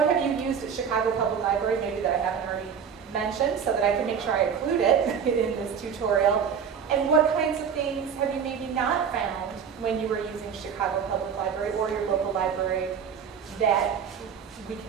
have you used at Chicago Public Library, maybe that I haven't already mentioned, so that I can make sure I include it in this tutorial. And what kinds of things have you maybe not found when you were using Chicago Public Library or your local library that we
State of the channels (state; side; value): quieter; left; 7.2 dB